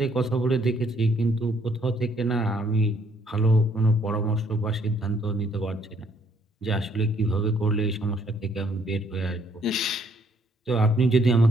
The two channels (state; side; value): normal; both; correlation 0.67